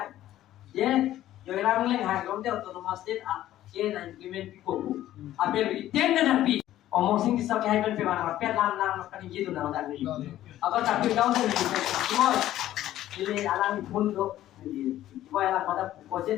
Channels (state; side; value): quieter; right; 13.4 dB